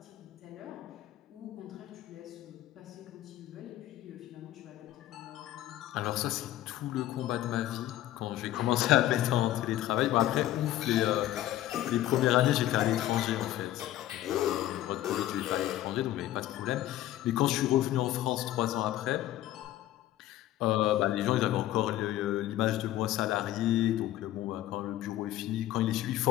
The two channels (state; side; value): quieter; right; 13.9 dB